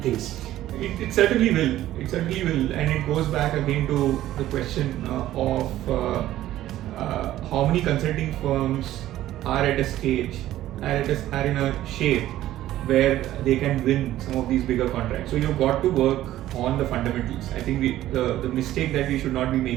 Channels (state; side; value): quieter; left; 13.9 dB